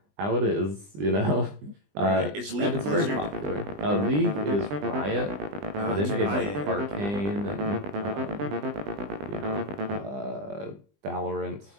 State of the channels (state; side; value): late; left; 20 ms